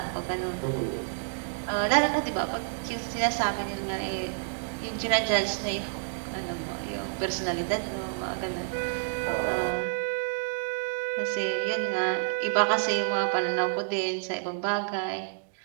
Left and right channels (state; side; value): silent; left; digital silence